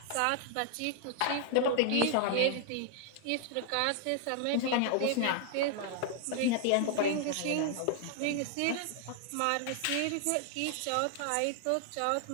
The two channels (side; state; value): both; different; correlation 0.00